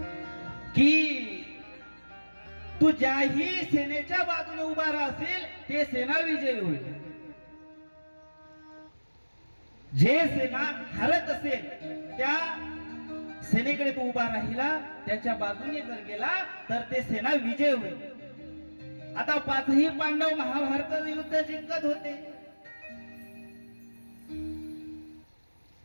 की तू ज्याही सेनेच्या बाजूने उभा राहशील ते सेना विजयी होईल. जे सेना हरत असेल त्या सेनेकडे तू उभा राहिला, त्याच्या बाजूने जर गेला तर ते सेना विजय होईल. आता पाचही पांडव महाभारताचं युद्ध जिंकत होते.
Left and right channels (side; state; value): both; inverted; correlation -1.00